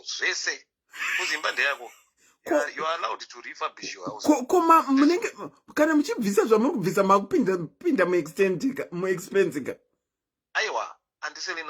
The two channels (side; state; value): both; identical; correlation 1.00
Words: zvese. Kuzimba ndeyako. You are allowed to refurbish your house. Koma munenge kana muchibvisa zvamuri kubvisa makupinda mu expense. Aiwa,